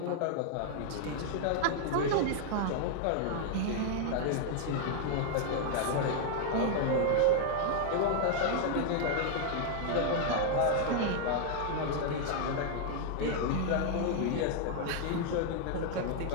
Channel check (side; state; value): both; different; correlation 0.00